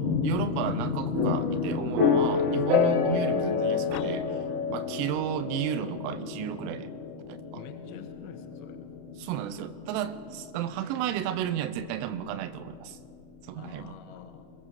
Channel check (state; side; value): late; left; 31 ms